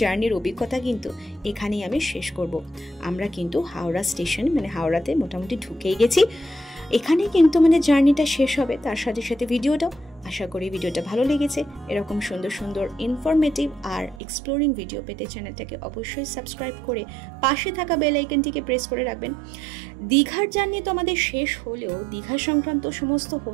জার্নির অভিজ্ঞতা কিন্তু এখানেই আমি শেষ করব। আমরা কিন্তু হাওড়া স্টেশন হাওড়াতে মোটামুটি ঢুকেই গেছি। এখানে কিন্তু জার্নিটা শেষ হবে, তার সাথে সাথে ভিডিওটাও। আশা করি ভিডিওটা ভালো লেগেছে। এরকম সুন্দর ইনফরমেটিভ আর এক্সপ্লোরিং ভিডিও পেতে চ্যানেলটাকে অবশ্যই সাবস্ক্রাইব করে পাশে থাকা বেল আইকনটিকে প্রেস করে রাখবেন। দীঘার জার্নি তো আমাদের শেষ হলেও দীঘা সংক্রান্ত সমস্ত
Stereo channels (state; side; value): drops out; left; at 14.2 s